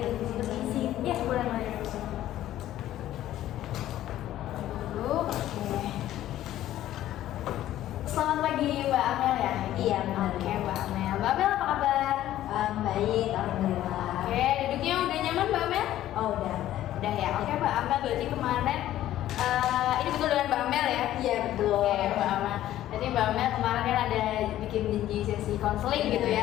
di sini isi. Ya, boleh Mbak. Dulu, oke. Selamat pagi Mbak Amel ya? Iya, benar. Oke Mbak Amel. Mbak Amel apa kabar? Baik, alhamdulillah. Oke, duduknya udah nyaman Mbak Amel? Oh, udah. Udah ya. Oke Mbak Amel, berarti kemarin ini betul dengan Mbak Amel ya? Iya, betul. Oke Mbak Amel. Jadi Mbak Amel kemarin kan ada bikin janji sesi konseling gitu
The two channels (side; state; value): right; quieter; 13.3 dB